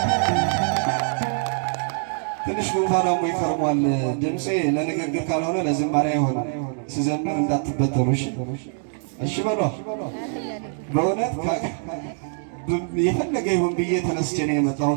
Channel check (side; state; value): left; silent; digital silence